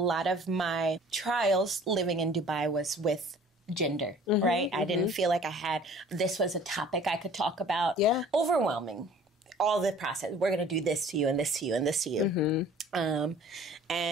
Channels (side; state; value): both; normal; correlation 0.50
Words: of my trials living in Dubai was with gender, right? I didn't feel like this was a topic I could talk about. Overwhelming. All the process. We're going to do this to you and this to you and this to you.